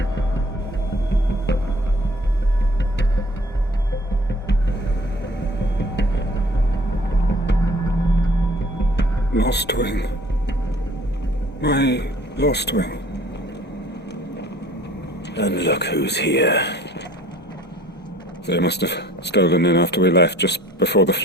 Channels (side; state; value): both; normal; correlation 0.53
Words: Lostwing. My Lostwing. And look who's here. They must have stolen in after we left, just before the